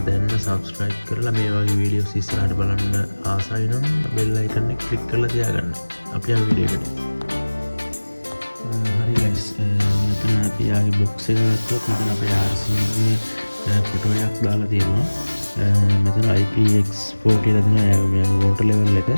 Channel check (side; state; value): both; inverted; correlation -1.00